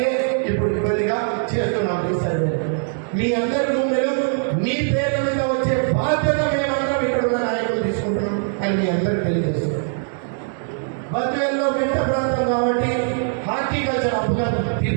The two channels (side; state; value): left; silent; digital silence